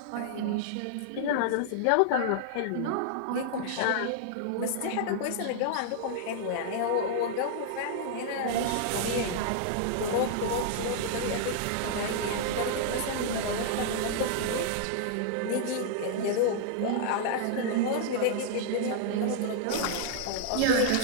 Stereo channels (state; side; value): different; both; correlation -0.01